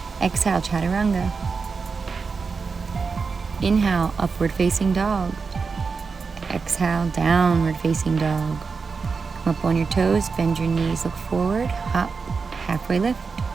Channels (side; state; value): left; quieter; 4.9 dB